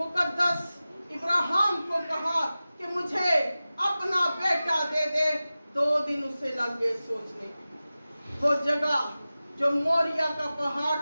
इब्राहिम को कहा कि मुझे अपना बेटा दे दे। 2 दिन उसे लग गए सोचने की। वो जगह जो मोरिया का पहाड़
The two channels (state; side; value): inverted; both; correlation -0.96